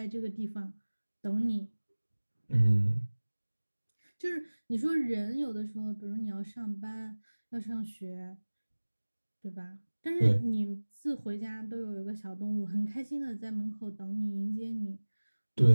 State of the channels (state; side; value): inverted; both; correlation -1.00